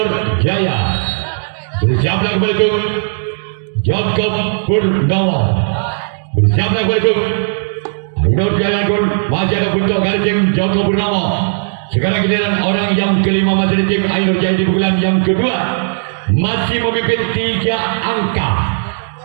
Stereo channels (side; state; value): left; silent; digital silence